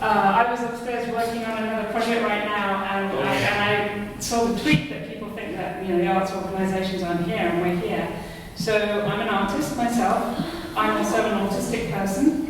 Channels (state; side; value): identical; both; correlation 1.00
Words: was upstairs working on another project right now, and I saw the tweet that people think that the arts organisations aren't here, and we're here. So I'm an artist myself. I'm also an autistic person.